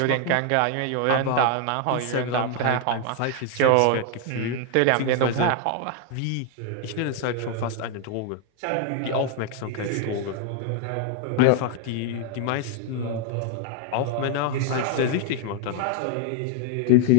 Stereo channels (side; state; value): both; different; correlation 0.00